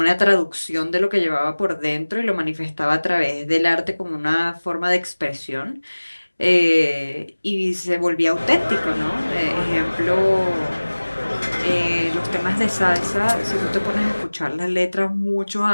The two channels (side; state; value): both; inverted; correlation -1.00